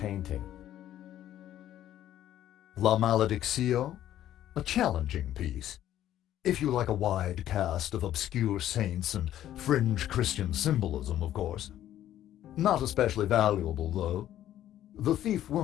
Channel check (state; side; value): quieter; right; 12.2 dB